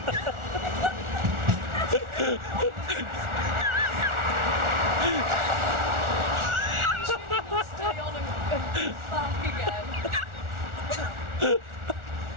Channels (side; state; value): left; late; 1.4 ms